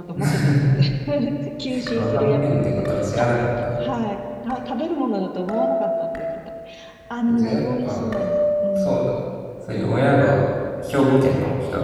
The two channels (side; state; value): both; identical; correlation 1.00